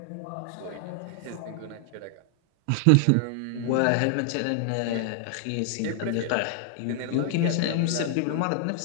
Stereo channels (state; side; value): different; both; correlation 0.00